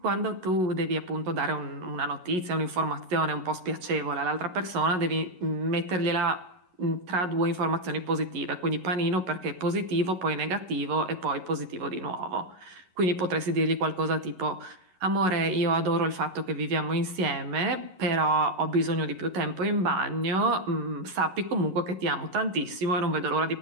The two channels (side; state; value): left; late; 11 ms